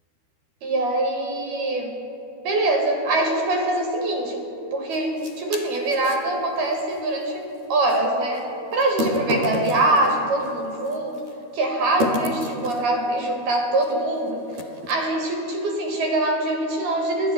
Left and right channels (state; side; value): late; left; 12 ms